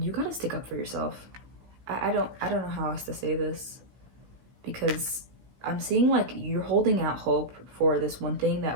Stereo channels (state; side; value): late; left; 16 ms